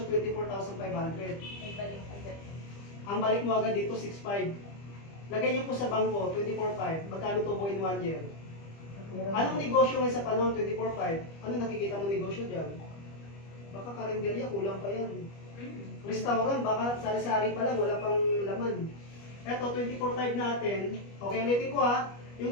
24,500? May balik agad. Ang balik mo agad dito, 6,500. Lagay niyo po sa bangko, 24,500. Magkano to po in 1 year? Anong negosyo ngayon sa panahon, 24,500? Ano nakikita mo negosyo dyan? Baka karinderya, kulang pa yan. Restaurant, baka sari-sari pa lang, wala pang laman. Eto, 24,500 natin. Okay, ulitin ko ha.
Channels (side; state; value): right; late; 25 ms